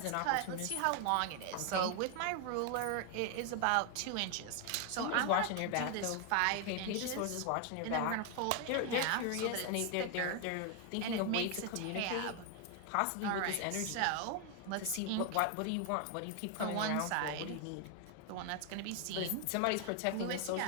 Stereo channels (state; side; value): different; both; correlation 0.01